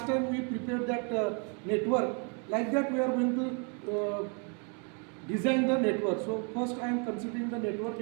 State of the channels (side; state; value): left; quieter; 36.4 dB